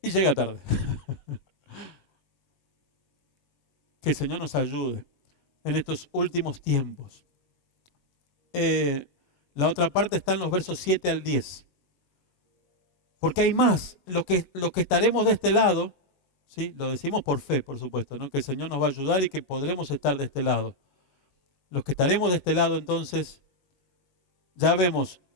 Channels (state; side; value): late; right; 21 ms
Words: Y llega tarde. Que el Señor nos ayude en estos últimos tiempos. La otra parte está en los versos 7 al 10. Porque hay más. Los que estaremos de este lado, ¿sí? Lo decimos por fe, por supuesto, ¿no? Que el Señor nos va a ayudar y que podremos estar de este lado. Los que estaremos de este lado, entonces, ya vemos